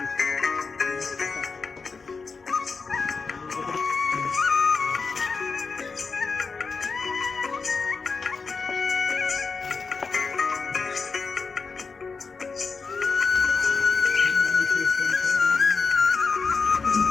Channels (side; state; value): right; quieter; 4.7 dB